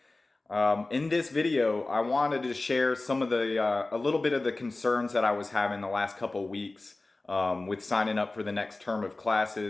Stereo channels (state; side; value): quieter; right; 3.1 dB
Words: In this video, I wanted to share some of a little bit of the concerns that I was having the last couple weeks with signing up for the next term of